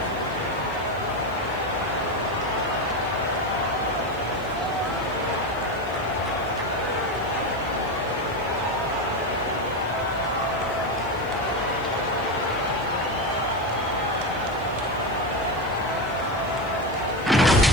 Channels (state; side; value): noise; left; hiss, 25 dB below the sound